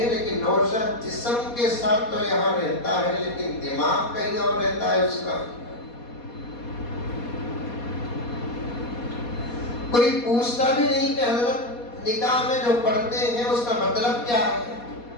لیکن نوشہ جسم کے ساتھ تو یہاں رہتا ہے لیکن دماغ کہیں اور رہتا ہے اس کا. کوئی پوچھتا بھی نہیں کہ حضرت نکاح میں جو پڑھتے ہیں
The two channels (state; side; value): late; right; 4.2 ms